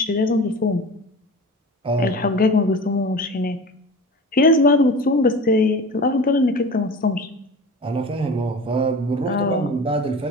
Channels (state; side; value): normal; both; correlation 0.35